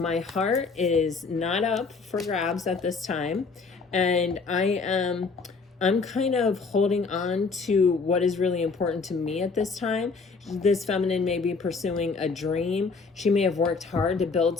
heart is not up for grabs at this time. And I'm kind of holding on to what is really important to me at this time. this feminine may be pursuing a dream. She may have worked hard to build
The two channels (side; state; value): right; quieter; 4.5 dB